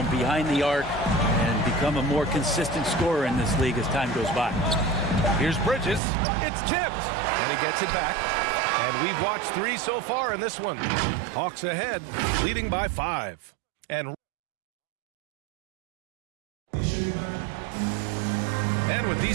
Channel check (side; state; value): left; drops out; at 6.0 s